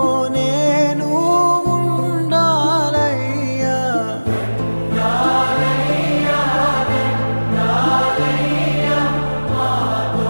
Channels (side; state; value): both; inverted; correlation -1.00